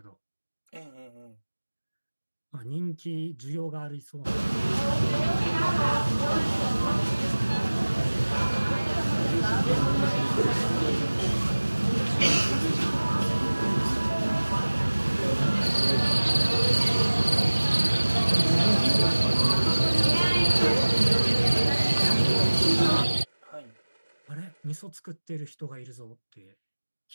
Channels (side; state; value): both; inverted; correlation -1.00